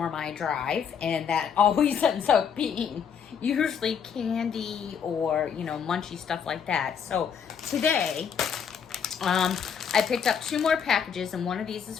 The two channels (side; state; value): right; quieter; 7.3 dB